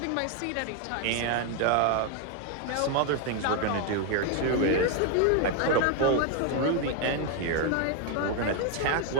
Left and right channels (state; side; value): different; both; correlation 0.01